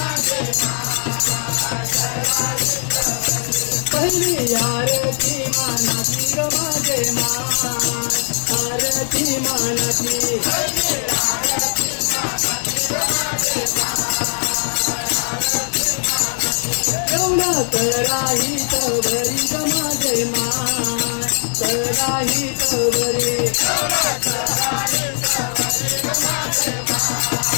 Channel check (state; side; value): silent; right; digital silence